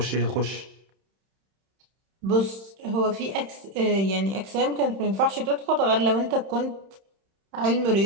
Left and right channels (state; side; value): late; left; 31 ms